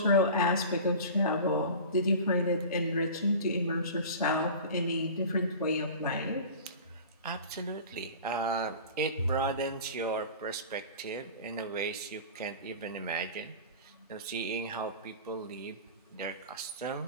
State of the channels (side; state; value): both; inverted; correlation -0.36